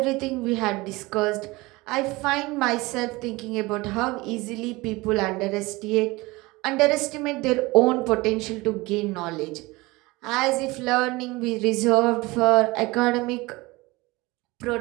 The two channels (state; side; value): quieter; left; 22.1 dB